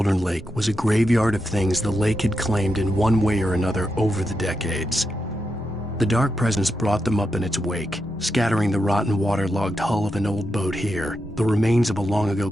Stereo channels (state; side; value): normal; both; correlation 0.86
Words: Lake was a graveyard of things the lake had claimed in one way or another over the decades. The dark presence brought them up in its wake, scattering the rotten waterlogged hull of an old boat here, the remains of a long-ago